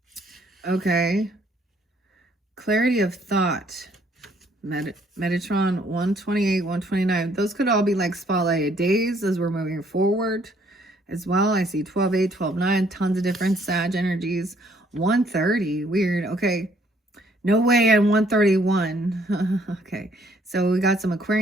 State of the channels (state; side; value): normal; both; correlation 0.65